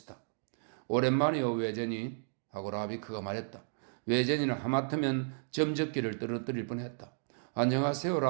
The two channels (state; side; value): silent; left; digital silence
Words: 오랜만이요 외제니 하고 라비크가 말했다. 외제니는 하마터면 점적기를 떨어뜨릴 뻔했다. 안녕하세요